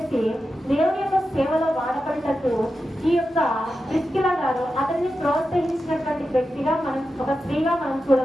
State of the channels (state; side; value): normal; both; correlation 0.90